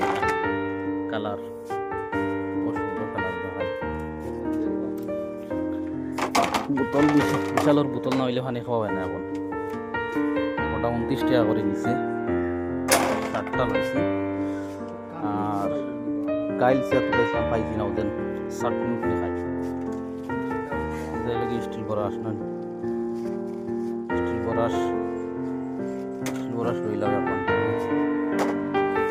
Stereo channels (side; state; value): both; identical; correlation 1.00